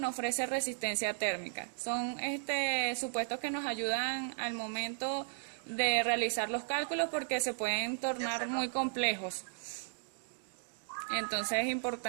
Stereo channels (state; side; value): silent; left; digital silence